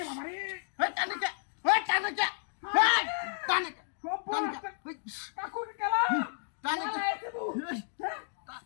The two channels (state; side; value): silent; right; digital silence